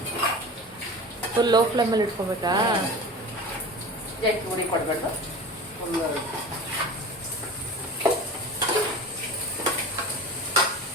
ಫುಲ್ ಲೋ ಫ್ಲೇಮಲ್ಲಿ ಇಟ್ಕೊಬೇಕಾ? ಜಾಸ್ತಿ ಉಡಿ ಕೊಡಬೇಕು.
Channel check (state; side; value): normal; both; correlation 0.34